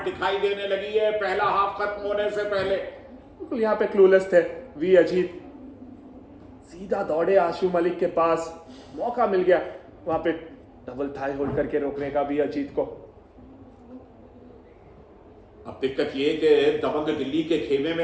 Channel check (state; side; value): identical; both; correlation 1.00